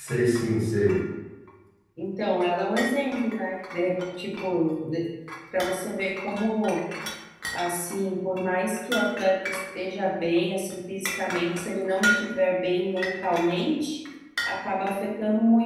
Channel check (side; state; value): both; identical; correlation 1.00